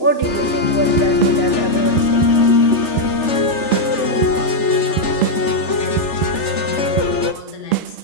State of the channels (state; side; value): late; right; 3.3 ms